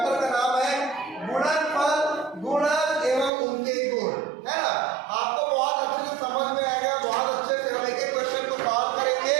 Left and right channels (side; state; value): left; drops out; at 3.3 s